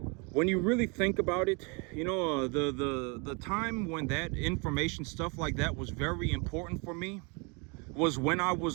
When you really think about it, the time when that information, stuff like that, was very important for me was when I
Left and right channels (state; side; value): quieter; left; 31.8 dB